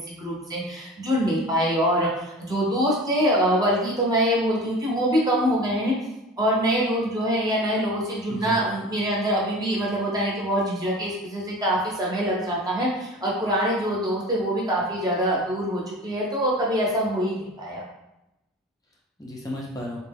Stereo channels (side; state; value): both; normal; correlation 0.36